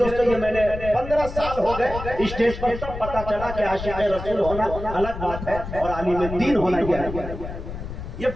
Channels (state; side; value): noise; left; rumble, 9 dB below the sound